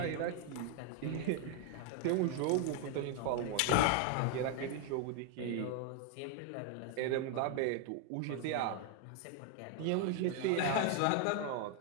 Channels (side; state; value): both; different; correlation 0.00